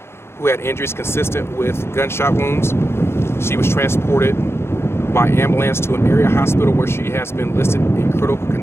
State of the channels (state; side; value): late; right; 0.12 ms